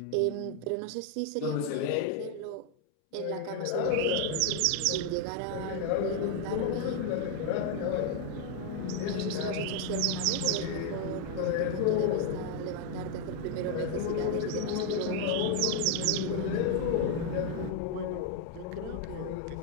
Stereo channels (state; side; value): different; both; correlation 0.00